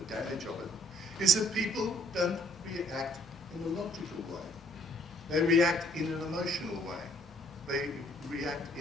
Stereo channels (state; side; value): normal; both; correlation 0.63